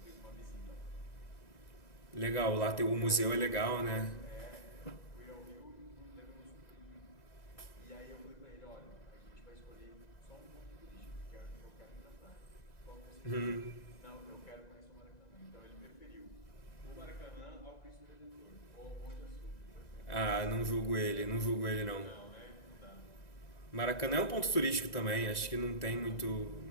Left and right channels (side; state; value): right; late; 2.0 ms